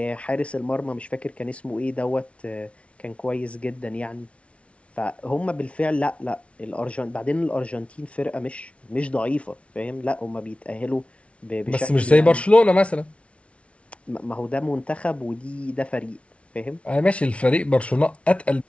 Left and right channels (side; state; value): right; late; 0.062 ms